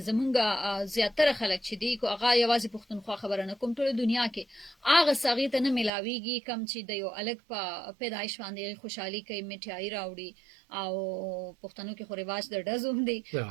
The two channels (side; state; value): left; drops out; at 5.9 s